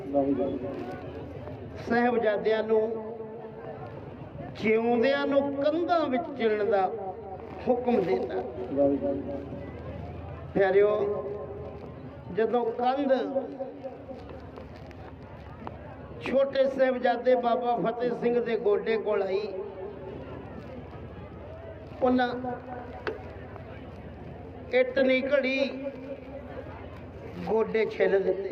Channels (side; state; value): both; identical; correlation 1.00